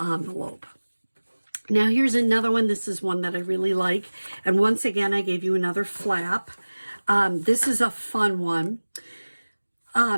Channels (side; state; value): both; inverted; correlation -1.00